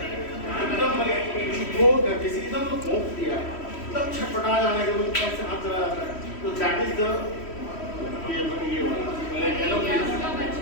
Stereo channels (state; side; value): late; right; 3.1 ms